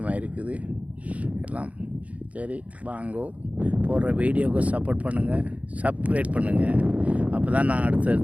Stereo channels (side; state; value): left; late; 0.067 ms